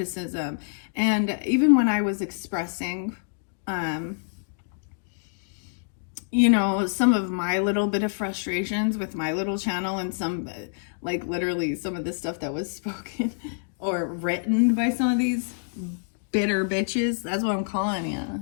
And even when I was expressing, you know, some of my little bit of frustrations with my little channel, and some, like literally some of the stuff that was spoken or written by some of these bitter bitches. That's what I'm calling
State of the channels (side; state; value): right; silent; digital silence